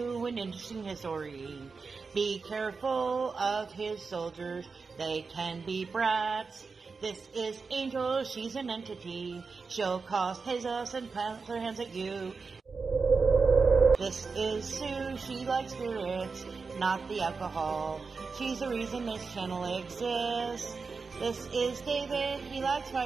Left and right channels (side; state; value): left; quieter; 4.7 dB